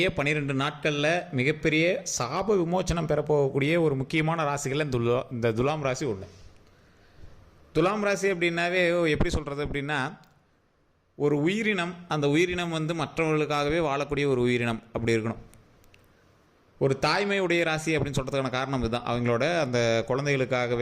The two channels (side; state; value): both; identical; correlation 1.00